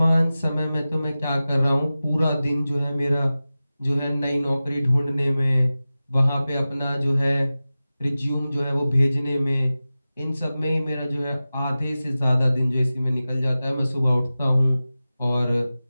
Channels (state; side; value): inverted; both; correlation -0.95